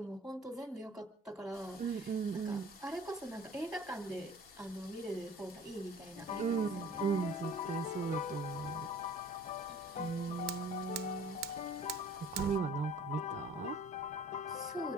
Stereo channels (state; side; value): normal; both; correlation 0.48